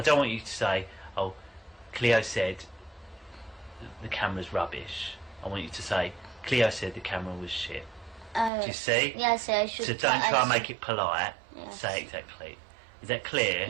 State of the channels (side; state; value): left; drops out; at 8.5 s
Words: don't want you to say, "Oh, Cleo said the camera's rubbish." I want you to say, "Cleo said the camera was shit." Do you see? Yes, I should. So don't try and make it polite. Yes. Say it exactly. Is that clear?